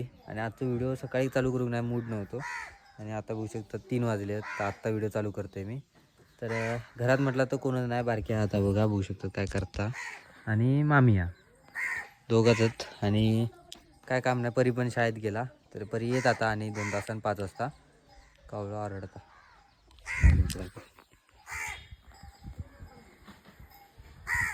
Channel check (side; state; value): both; identical; correlation 1.00